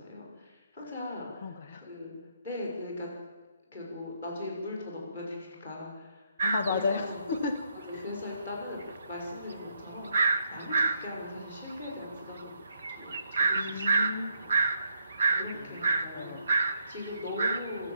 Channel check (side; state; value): both; inverted; correlation -0.75